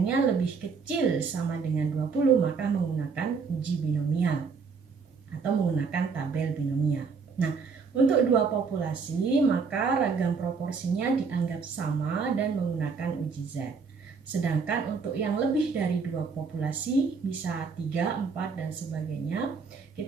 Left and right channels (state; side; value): quieter; left; 5.2 dB